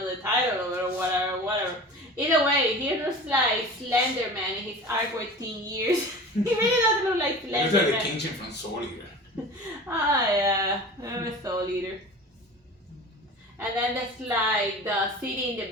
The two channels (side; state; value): both; normal; correlation 0.37